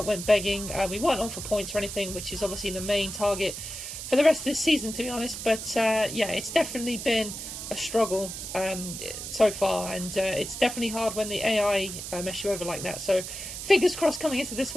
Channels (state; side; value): noise; right; hiss, 8 dB below the sound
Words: went begging. We weren't on for points or anything, which is obviously the main target for the rest of this season, to be honest. But, yeah, it's definitely been a struggle so far, and it's definitely hard when the AI mess you over like that. So fingers crossed coming into this